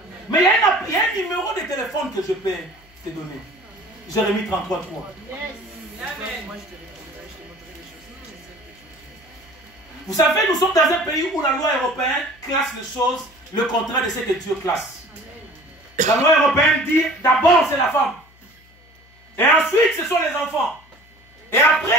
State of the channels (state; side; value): noise; left; hum, 28 dB below the sound